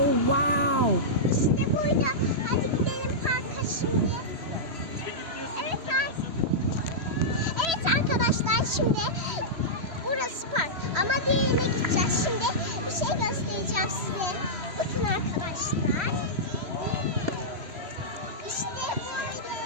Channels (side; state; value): left; late; 3.1 ms